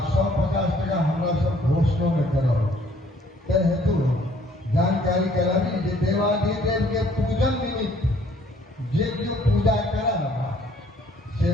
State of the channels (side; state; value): both; normal; correlation 0.61